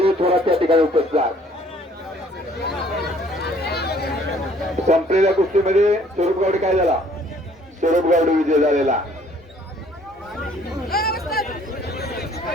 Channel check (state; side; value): normal; both; correlation 0.59